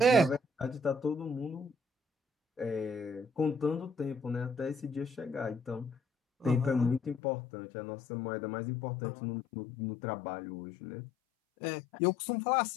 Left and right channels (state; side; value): drops out; right; at 7.2 s